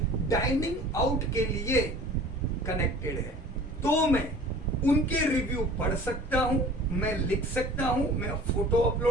डाइनिंग आउट के लिए कनेक्टेड है। तो मैं उनके रिव्यू पढ़ सकता हूं, मैं लिख सकता हूं, मैं फोटो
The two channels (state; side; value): normal; both; correlation 0.45